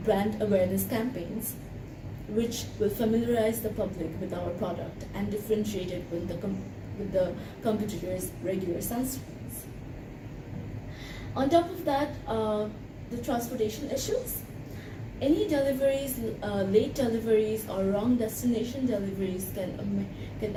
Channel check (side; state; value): both; identical; correlation 1.00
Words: brand awareness campaigns which will familiarize the public with our product and differentiate it with the competitors' regular sunscreens. On top of that, the transportation issues. Any deliveries, late deliveries or wrong destination deliveries can